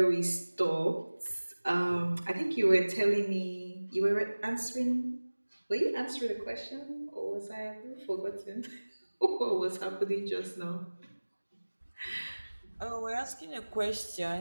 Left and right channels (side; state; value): both; inverted; correlation -1.00